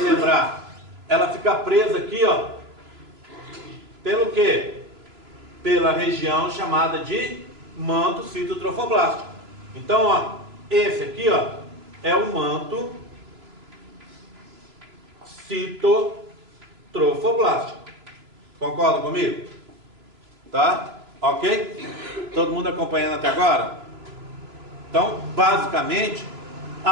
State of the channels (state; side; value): late; left; 3.0 ms